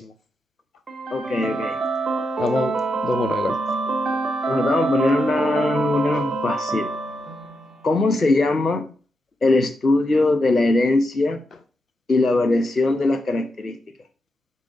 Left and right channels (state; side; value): normal; both; correlation 0.85